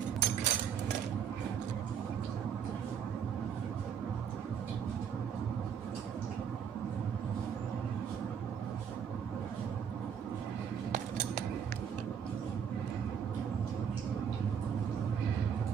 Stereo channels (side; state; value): left; quieter; 7.8 dB